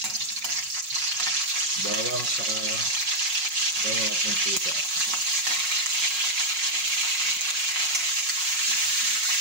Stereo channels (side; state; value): left; late; 5.5 ms